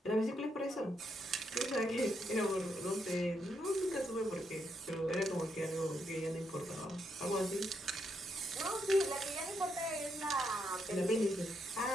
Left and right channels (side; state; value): both; normal; correlation 0.79